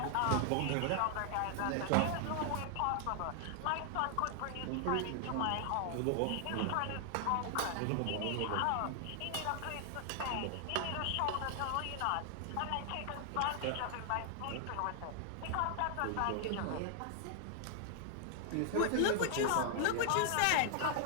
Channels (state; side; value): different; both; correlation 0.00